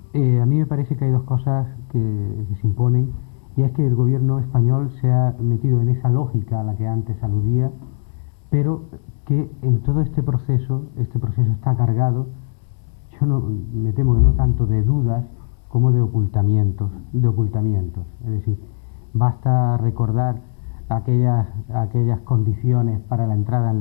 a mí me parece que hay 2 cosas que se imponen, y es que el gobierno español se ha metido en esa lógica a la que antes aludía, pero que en todo este proceso está cargado, me temo que no tanto de dudas como de ocultamientos. Es decir, basta recordar aquellas condiciones para la entrada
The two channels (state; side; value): silent; right; 66 dB below the other